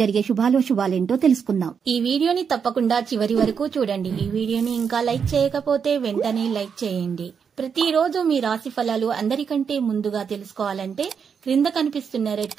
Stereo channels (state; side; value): quieter; left; 6.7 dB